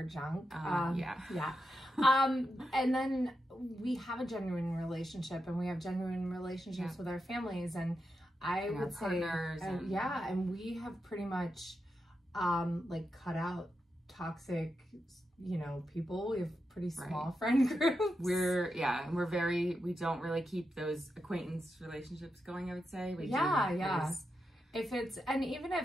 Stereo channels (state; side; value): normal; both; correlation 0.87